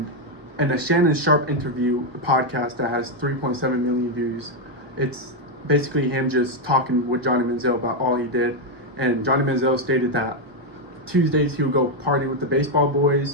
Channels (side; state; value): left; late; 1.1 ms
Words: in a Shannon Sharp interview, a podcast that has 3.7 million views, it's basically him just talking with Johnny Manziel about all he did. And Johnny Manziel stated that Tuesdays he would go party with the baseball